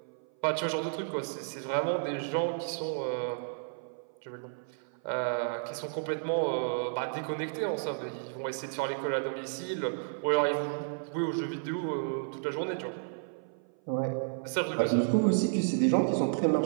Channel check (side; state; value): left; silent; 55 dB below the other